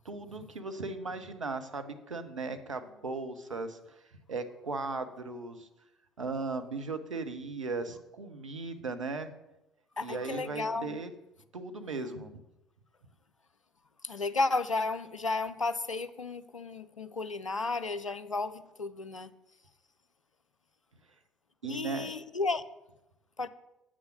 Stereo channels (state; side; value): normal; both; correlation 0.55